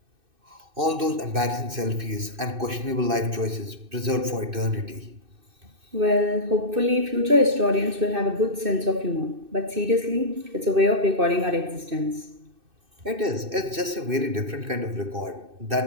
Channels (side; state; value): left; late; 2.6 ms